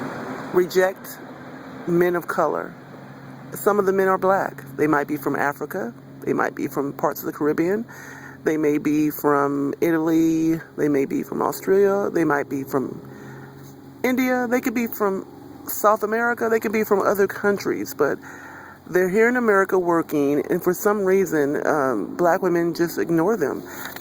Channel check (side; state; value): both; identical; correlation 1.00